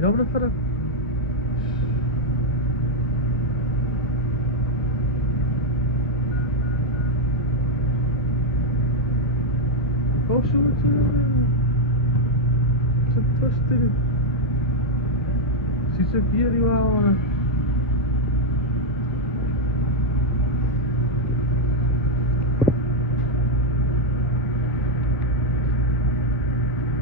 na sarap. Koşu çok taştırı. Çiçek yeri var ona.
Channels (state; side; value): normal; both; correlation 0.01